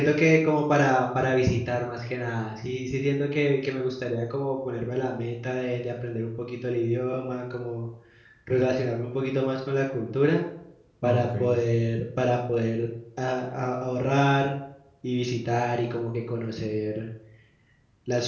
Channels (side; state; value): both; identical; correlation 1.00